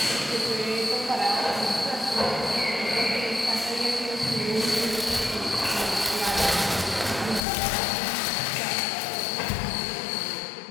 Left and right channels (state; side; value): drops out; right; at 7.4 s